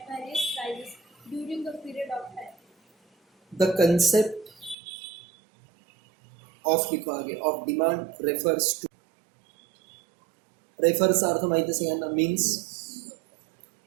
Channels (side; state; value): left; drops out; at 4.8 s